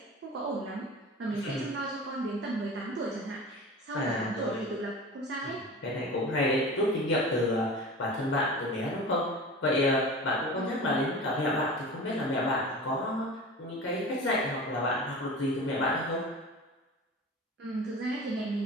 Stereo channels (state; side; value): normal; both; correlation 0.35